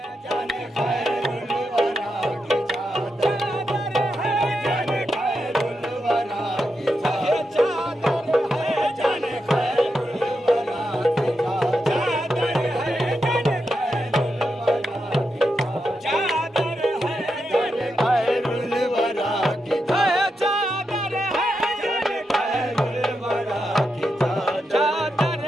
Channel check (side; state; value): both; normal; correlation 0.86